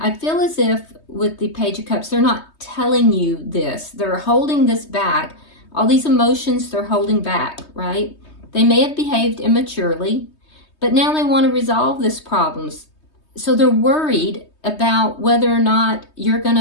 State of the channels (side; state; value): right; late; 3.2 ms